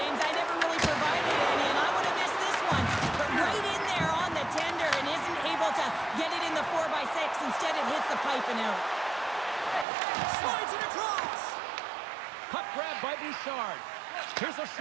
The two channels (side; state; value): left; drops out; at 9.9 s